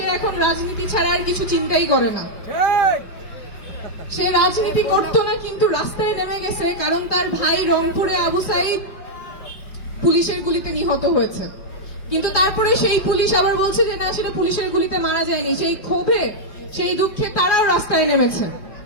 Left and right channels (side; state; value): right; late; 4.8 ms